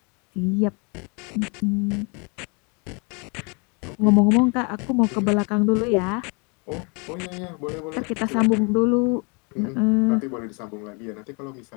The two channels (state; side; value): quieter; right; 33.1 dB